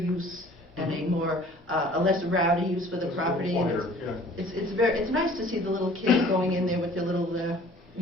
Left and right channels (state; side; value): normal; both; correlation 0.50